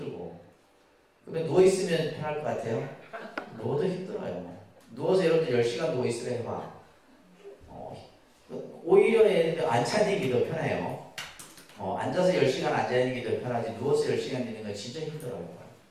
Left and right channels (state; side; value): identical; both; correlation 1.00